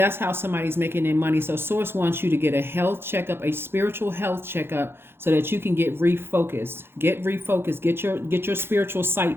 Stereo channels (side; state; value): left; late; 0.11 ms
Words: how somebody's making their money. So source wants you to get a health checkup, a spiritual health checkup, so that you can get refocused. Get refocused. Get your spiritual